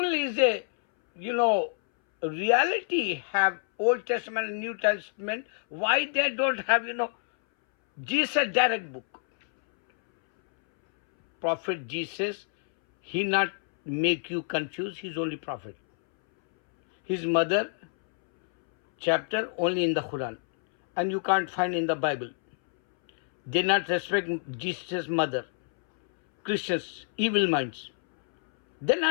is a, reality, have Old Testament and New Testament, why they don't have, Jesus direct book? Prophet Jesus, he not make you confused, he's only prophet. His mother, chapter only in the Quran, and you can't find in the Bible. They not respect Jesus' mother. Christians, evil minds. They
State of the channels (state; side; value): silent; right; 60 dB below the other